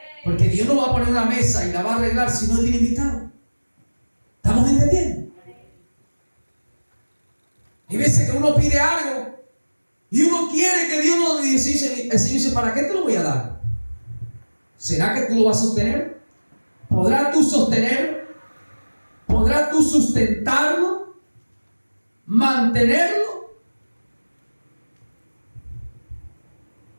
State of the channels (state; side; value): inverted; both; correlation -1.00